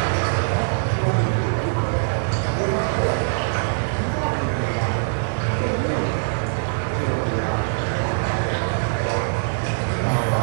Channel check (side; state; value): left; silent; 56 dB below the other